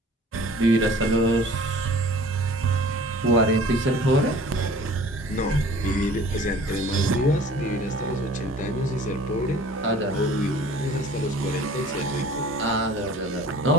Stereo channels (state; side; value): normal; both; correlation 0.48